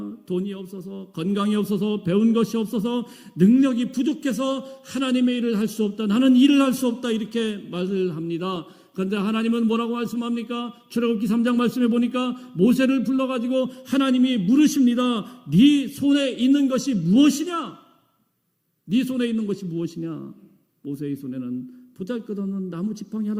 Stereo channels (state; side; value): identical; both; correlation 1.00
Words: 돈이 없어서, 건강이 없어서, 배운 것이 없어서, 능력이 부족해서 하나님의 일을 할 수 없다. 나는 일을 할 수 없다. 이렇게 말을 합니다. 그런데 하나님은 뭐라고 말씀합니까? 출애굽기 3장 말씀해 보니까 모세를 불러가지고 하나님이 물으십니다. 네 손에 있는 것이 무엇이냐? 네 손에 있는 것이 무엇이냐? 모세의 손에는 보잘것없는 나무 지팡이